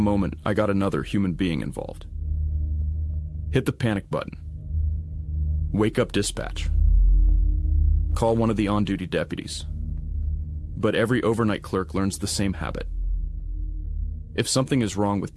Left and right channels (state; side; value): identical; both; correlation 1.00